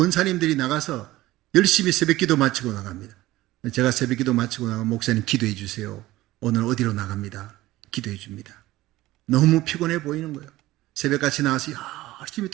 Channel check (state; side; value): quieter; left; 17.2 dB